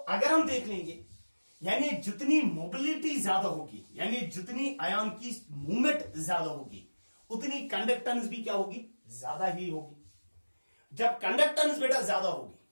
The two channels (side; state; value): both; inverted; correlation -1.00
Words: हम देख लेंगे, यानी जितनी मोबिलिटी ज्यादा होगी, यानी जितनी आयन की मूवमेंट ज्यादा होगी, उतनी कंडक्टेंस भी क्या होगी, ज्यादा ही होगी। जब कंडक्टेंस बेटा ज्यादा होगी